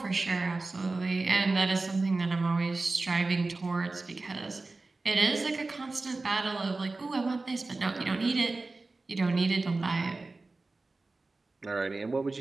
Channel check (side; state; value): left; quieter; 3.4 dB